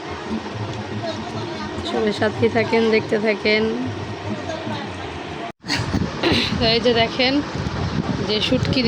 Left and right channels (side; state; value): both; identical; correlation 1.00